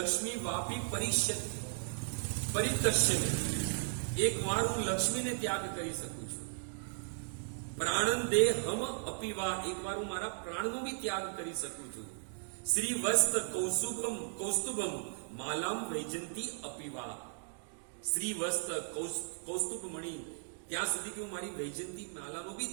વાપી પરિતશ્ય, એક વાર હું લક્ષ્મીને ત્યાગ કરી શકું છું. પ્રાણન દેહ હમ અપીવા, એક વાર હું મારા પ્રાણનો બી ત્યાગ કરી શકું છું. શ્રી વસ્ત કૌસ્તુભમ માલામ વૈજંતી અપીવા, શ્રી વસ્ત કૌસ્તુભ મણી, ત્યાં સુધી કે હું મારી વૈજંતી માલાનો બી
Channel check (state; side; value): silent; left; digital silence